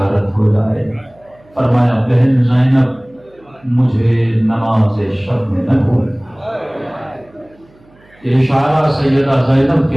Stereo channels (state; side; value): noise; right; hum, 30 dB below the sound